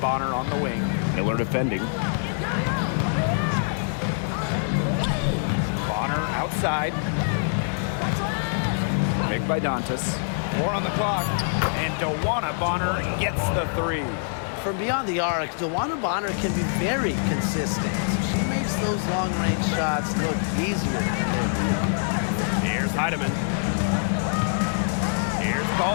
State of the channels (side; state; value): right; silent; 61 dB below the other